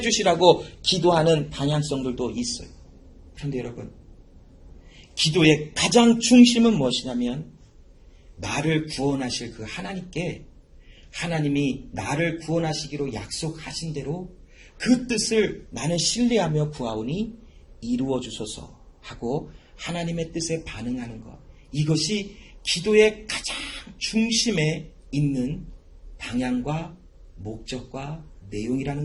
기도하는 방향성들도 있어요. 그런데 여러분, 기도의 가장 중심은 무엇이냐면, 나를 구원하실 그 하나님께, 하나님이 나를 구원하시기로 약속하신 대로 그 뜻을 나는 신뢰하며 구하오니 이루어 주소서 하고 하나님의 뜻에 반응하는 것, 이것이 기도의 가장 중심에 있는 방향과 목적과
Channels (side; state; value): both; identical; correlation 1.00